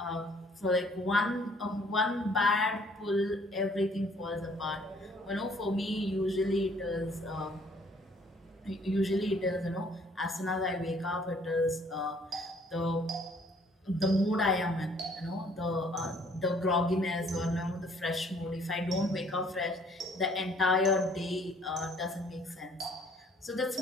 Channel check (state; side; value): normal; both; correlation 0.60